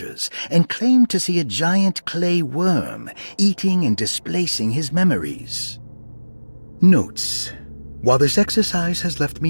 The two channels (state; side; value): inverted; both; correlation -1.00